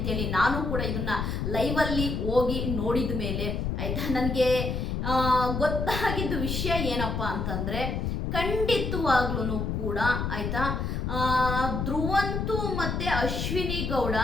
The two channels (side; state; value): left; noise; rumble, 1 dB below the sound